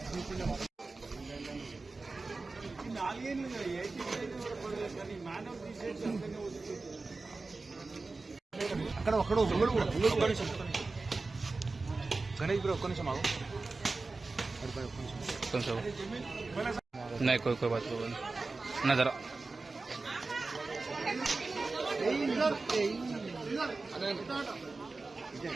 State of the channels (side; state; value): left; quieter; 3.7 dB